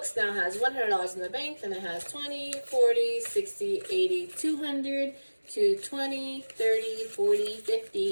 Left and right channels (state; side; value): inverted; both; correlation -1.00